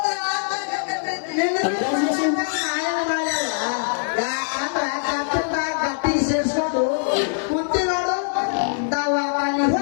ಗಟ್ಟಿ ಸೇರ್ಸ್ಕೊಂಡು ಕುಂತಿ ನೋಡು ದವಾಖಾನಿ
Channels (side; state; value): right; silent; digital silence